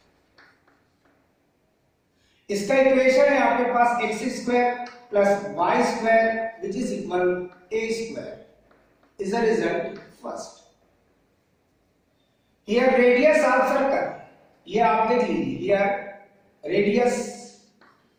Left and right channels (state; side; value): identical; both; correlation 1.00